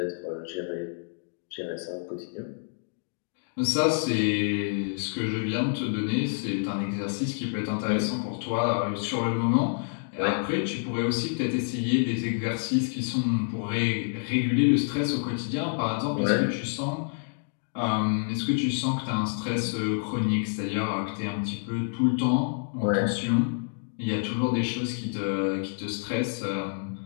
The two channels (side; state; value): right; silent; digital silence